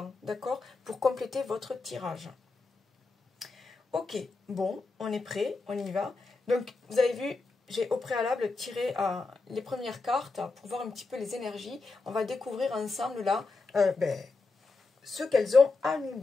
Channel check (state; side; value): quieter; right; 3.8 dB